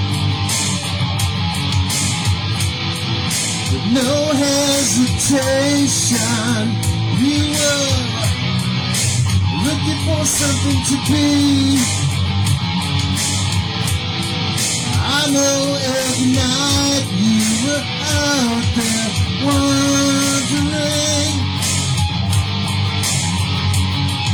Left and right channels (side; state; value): both; identical; correlation 1.00